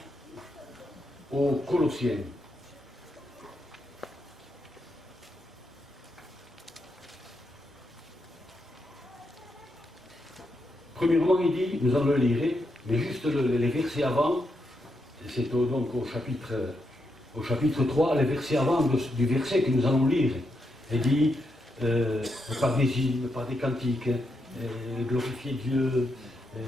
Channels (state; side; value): normal; both; correlation 0.83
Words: aux Colossiens. Premièrement, il dit, nous allons le lire, mais juste les versets avant, c'est donc au chapitre 3, les versets avant du verset que nous allons lire. Il dit, par des hymnes, par des cantiques, glorifier Dieu, vous